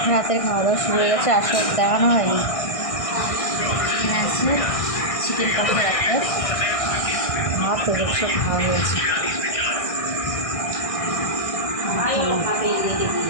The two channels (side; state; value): right; late; 1.6 ms